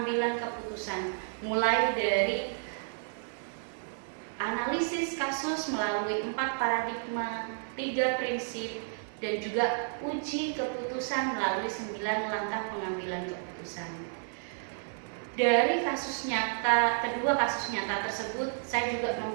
keputusan, mulai dari analisis kasus melalui 4 paradigma, 3 prinsip, dan juga uji keputusan melalui 9 langkah pengambilan keputusan. Dari kasus nyata, kedua kasus nyata tersebut, saya juga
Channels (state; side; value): silent; left; 57 dB below the other